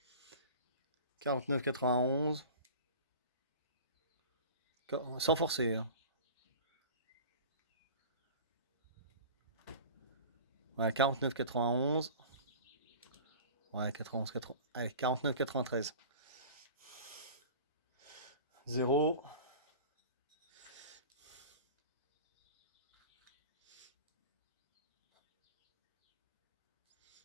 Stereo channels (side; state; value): both; inverted; correlation -0.38